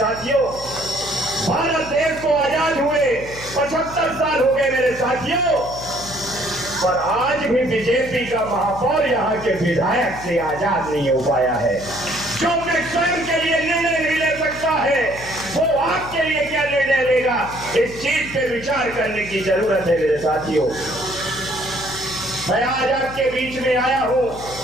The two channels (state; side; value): noise; left; hum, 15 dB below the sound